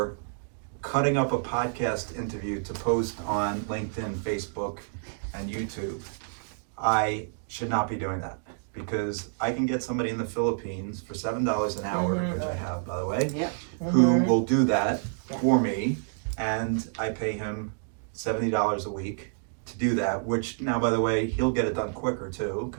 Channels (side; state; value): left; silent; digital silence